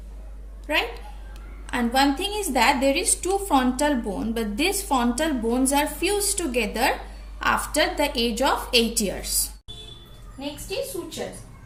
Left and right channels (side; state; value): both; identical; correlation 1.00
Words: right? And one thing is that there is two frontal bone, but these frontal bones are fused together after the age of 8 years. Next is sutures.